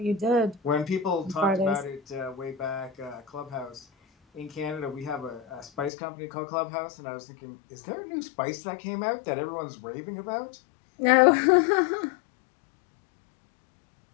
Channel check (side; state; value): right; drops out; at 5.9 s